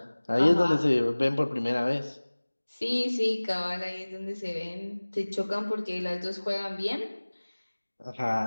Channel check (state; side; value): inverted; both; correlation -1.00